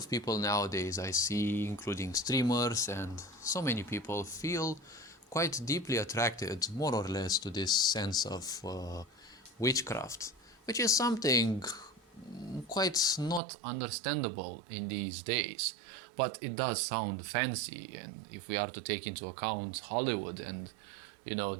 people nowadays I see, including streamers and so many people, feel quite deeply attracted, more or less, to this sense of witchcraft, which is something quite not understandable in these days. But it does sound fancy, and if we are to take into account Hollywood and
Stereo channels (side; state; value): left; drops out; at 13.4 s